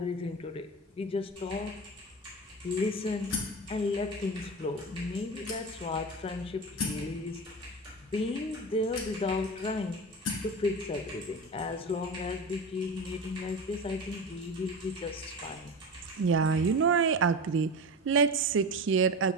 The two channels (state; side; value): normal; both; correlation 0.26